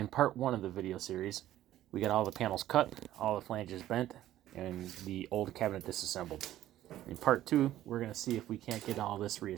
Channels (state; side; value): quieter; left; 13.4 dB